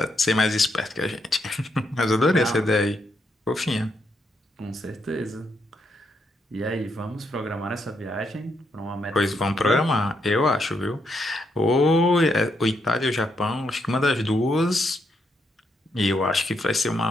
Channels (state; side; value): normal; both; correlation 0.78